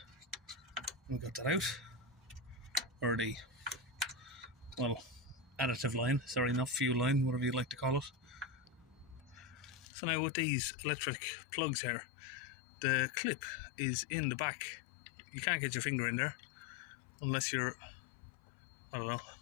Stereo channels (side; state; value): right; drops out; at 9.9 s